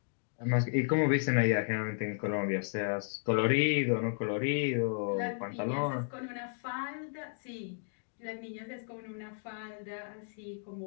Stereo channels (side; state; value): right; silent; digital silence